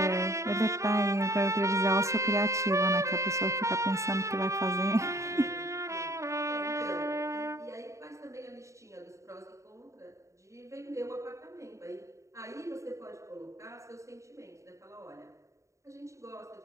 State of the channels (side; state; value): left; late; 0.15 ms